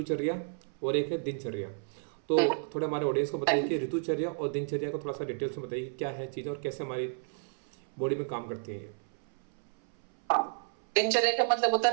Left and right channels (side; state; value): left; silent; 57 dB below the other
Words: और एक है दिनचर्या। तो थोड़ा हमारे ऑडियंस को बताइए कि ऋतुचर्या और दिनचर्या को थोड़ा सा डिटेल्स में बताइए, क्या है चीज़ें और कैसे हमारी बॉडी में काम करती हैं ये। हाँ, दिनचर्या का मतलब होता